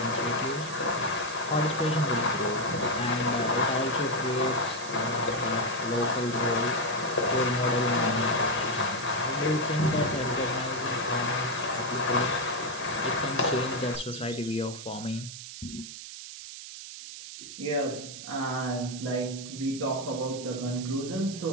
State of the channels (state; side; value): noise; right; hiss, 11 dB below the sound